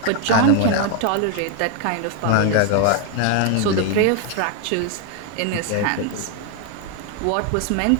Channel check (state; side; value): different; both; correlation 0.01